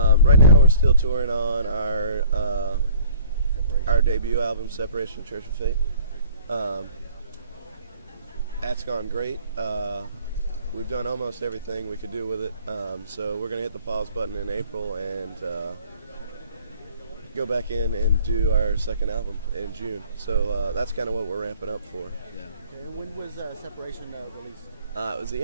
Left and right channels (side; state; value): both; inverted; correlation -0.53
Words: now we're still touring on our debut album, Separation Church of Fate. That's gone great. We've done almost everything we could do with it. So we're going to hit the pause button in April and go back in and do our second album in June. So that's kind of what we're ramping up for. Yeah. Okay, when was Separation released? It was the